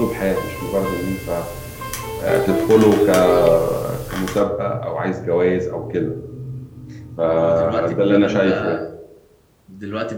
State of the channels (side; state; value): both; identical; correlation 1.00